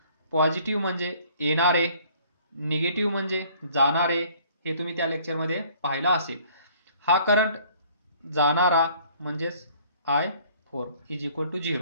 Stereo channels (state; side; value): inverted; both; correlation -0.57